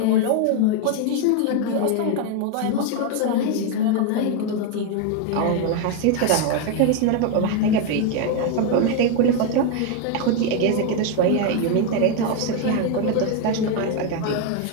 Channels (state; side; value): different; both; correlation 0.01